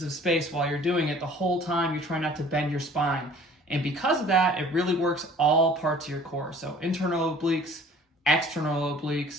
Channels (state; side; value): normal; both; correlation 0.51